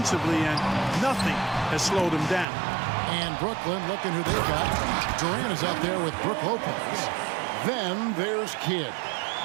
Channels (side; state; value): left; drops out; at 2.5 s